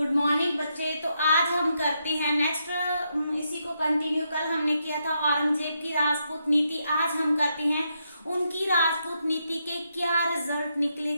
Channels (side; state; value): both; inverted; correlation -0.80